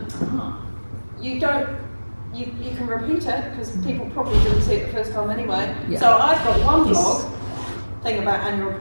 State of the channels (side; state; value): both; inverted; correlation -1.00